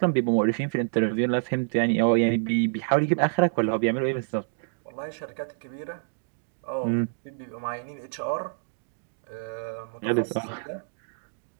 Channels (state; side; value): silent; left; digital silence